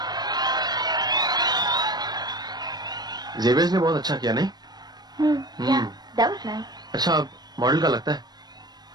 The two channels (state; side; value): late; left; 0.20 ms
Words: जेवियर्स ने बहुत अच्छा किया नहीं? Yeah, that was nice. अच्छा, अब मॉडल का लगता है।